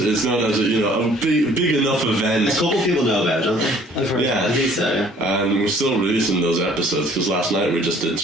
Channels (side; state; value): both; normal; correlation 0.56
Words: not as a big enough event. A couple people know about it, don't they? Yeah, I think so. Yeah. And we're still releasing those episodes because last night we just did